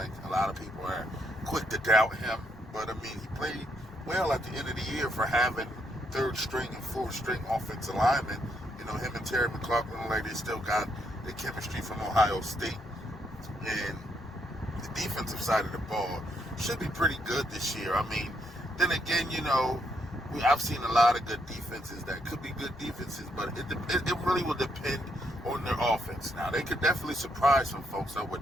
A lot of people are quick to doubt him. But, I mean, he played well at the end of the year for having third string and fourth string offensive linemen. You know, him and Terry McLaughlin, like they still got the chemistry from Ohio State. And the defensive side of the ball should be pretty good this year. I mean, then again, you know, I've seen a lot of good defenses that could be good defenses, but it really will depend on their offense. Now, they could definitely surprise some folks. I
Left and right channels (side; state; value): both; normal; correlation 0.76